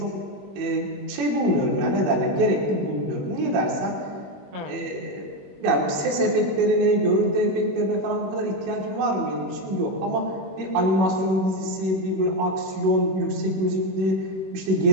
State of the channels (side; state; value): left; late; 21 ms